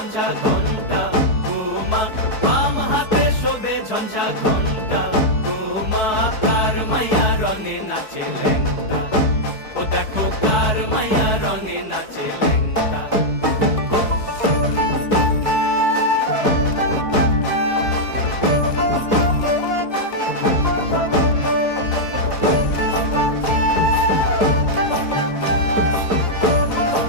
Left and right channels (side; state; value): right; late; 4.6 ms